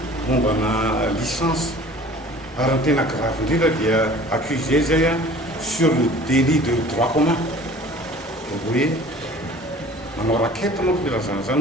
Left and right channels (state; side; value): normal; both; correlation 0.47